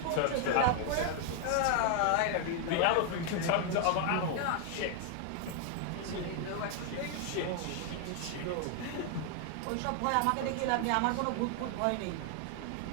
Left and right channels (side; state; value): both; different; correlation 0.00